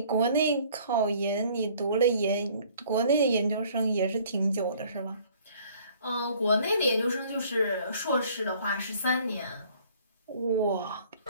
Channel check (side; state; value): both; inverted; correlation -0.56